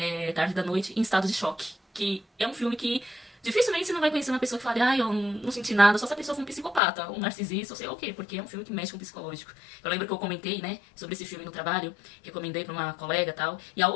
tarde da noite, em estado de choque. Que é um filme que dificilmente você não vai conhecer uma pessoa que fale, eu não senti nada, só se a pessoa for um psicopata, um narcisista, ou sei lá o quê, porque é um filme que mexe com o psicológico. Eu lembro que eu comentei, né, sobre esse filme no trabalho, recomendei pra uma colega e tal, e a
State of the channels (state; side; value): drops out; right; at 6.8 s